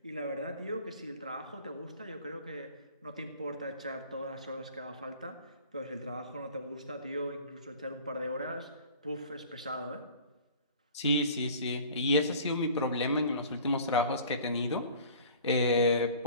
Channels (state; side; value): inverted; both; correlation -0.46